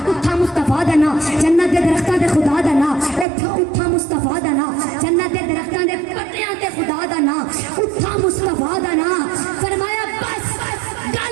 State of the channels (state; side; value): drops out; left; at 3.2 s